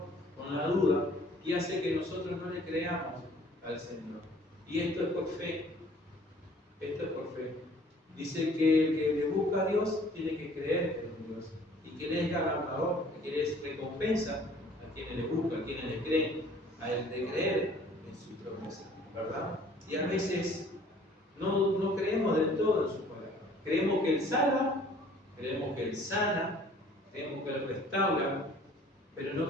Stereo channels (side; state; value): both; normal; correlation 0.54